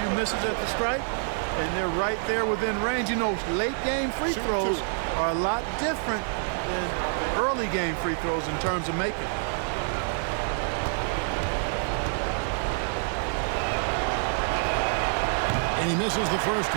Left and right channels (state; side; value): silent; left; 58 dB below the other